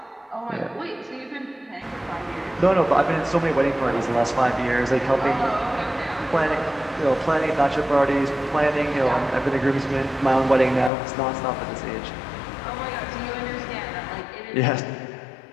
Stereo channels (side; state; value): right; drops out; at 10.9 s